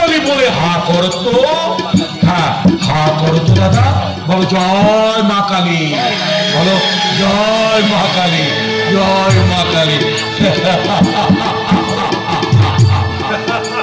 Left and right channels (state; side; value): identical; both; correlation 1.00